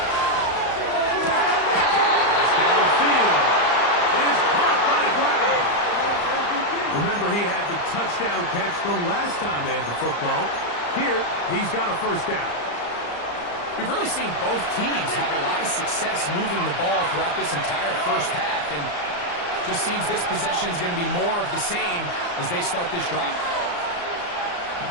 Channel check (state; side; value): late; right; 34 ms